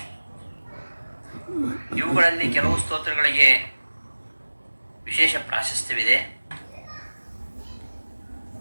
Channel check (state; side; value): inverted; both; correlation -1.00